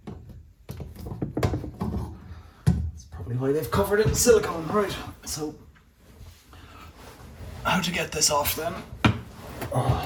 That's probably why they've covered it in silicone. Right, so how to get this off then?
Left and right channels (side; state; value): both; identical; correlation 1.00